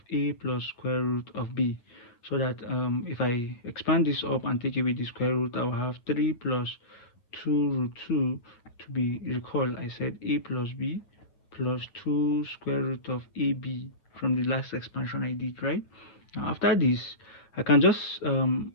a plus square root of b. So that if I expand this up and take away the square root, I will have 3 plus 2 root 2 to be, recall I said a plus b plus 2 square root of ab from the last expansion I did, right? Now after this, I can just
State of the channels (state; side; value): late; right; 8.5 ms